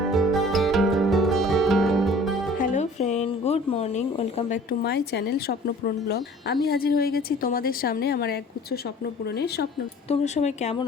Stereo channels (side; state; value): both; normal; correlation 0.48